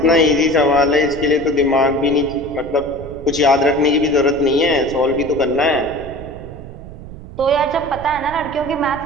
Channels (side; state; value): right; noise; rumble, 14 dB below the sound